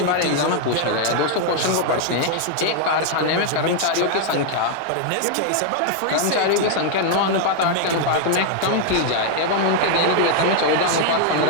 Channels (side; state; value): both; different; correlation 0.00